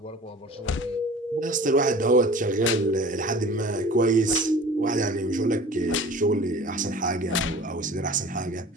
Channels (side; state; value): both; normal; correlation 0.43